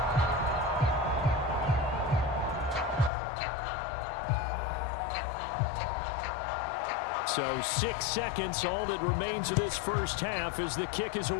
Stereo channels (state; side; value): drops out; right; at 3.1 s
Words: So 6 seconds, all that remains of this first half as the kick is